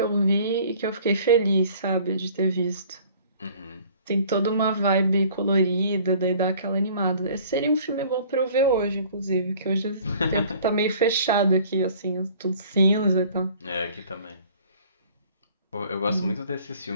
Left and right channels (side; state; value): both; inverted; correlation -0.52